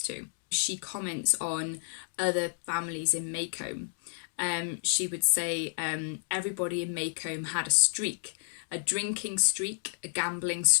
to. She comments on other families in Maycomb. She would say everybody in Maycomb had a streak, a drinking streak, a gambling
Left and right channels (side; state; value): right; silent; digital silence